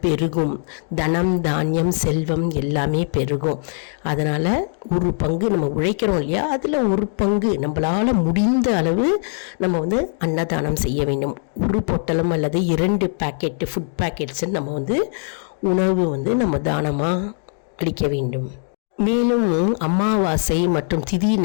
பெருகும். தனம் தானியம் செல்வம் எல்லாமே பெருகும். அதனால் ஒரு பங்கு நம்ம உழைக்கிறோம் இல்லையா, அதில் ஒரு பங்கு நம்மளால் முடிந்த அளவு நம்ம அன்னதானம் செய்ய வேண்டும். ஒரு பொட்டலம் அல்லது 2 பேக்கெட்டு ஃபுட் பேக்கெட்ஸ் நம்ம உணவு நம்ம தானமாக அளிக்க வேண்டும். மேலும் அமாவாசை மற்றும் திதி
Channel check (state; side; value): silent; right; 57 dB below the other